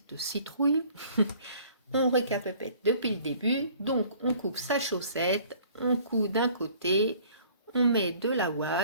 citrouille. On récapitule depuis le début. Donc, on coupe sa chaussette, on coud d'un côté, on met de la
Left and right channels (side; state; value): both; inverted; correlation -0.54